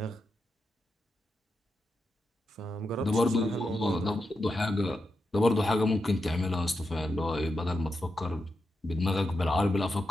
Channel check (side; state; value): both; normal; correlation 0.87